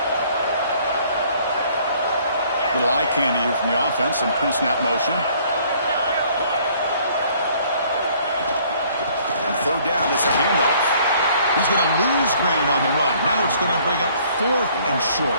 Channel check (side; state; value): both; inverted; correlation -0.60